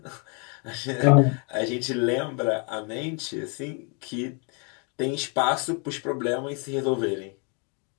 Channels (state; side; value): quieter; right; 35.1 dB